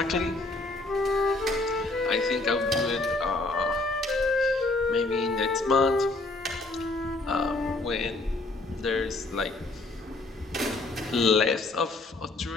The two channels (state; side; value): quieter; right; 3.1 dB